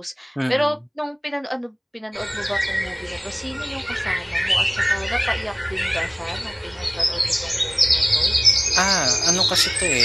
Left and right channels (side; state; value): both; identical; correlation 1.00